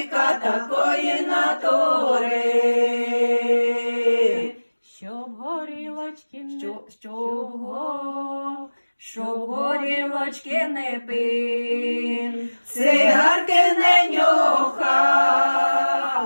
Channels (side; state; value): both; inverted; correlation -1.00